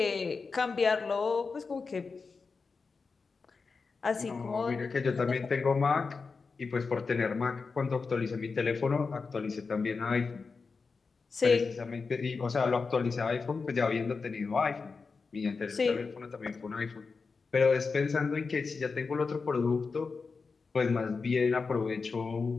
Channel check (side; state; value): right; quieter; 4.6 dB